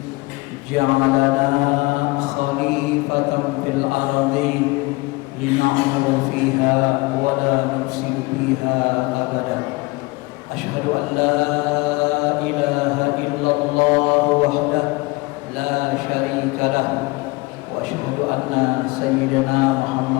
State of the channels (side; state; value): right; quieter; 23.8 dB